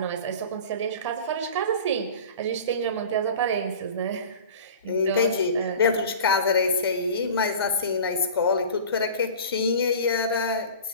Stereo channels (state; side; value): inverted; both; correlation -0.38